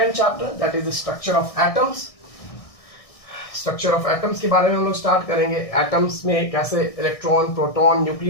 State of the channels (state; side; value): late; right; 1.6 ms